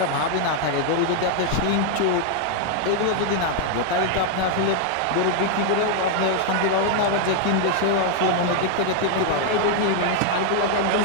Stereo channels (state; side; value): different; both; correlation 0.00